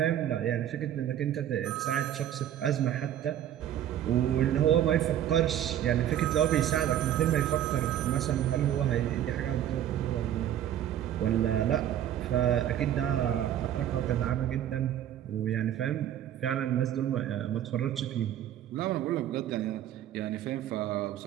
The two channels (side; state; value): left; quieter; 11.0 dB